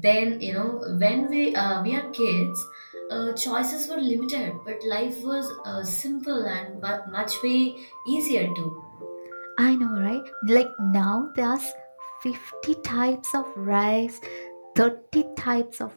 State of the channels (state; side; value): inverted; both; correlation -1.00